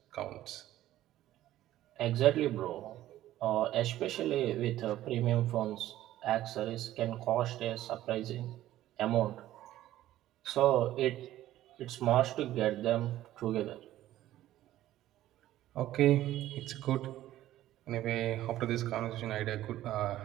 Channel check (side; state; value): left; quieter; 14.0 dB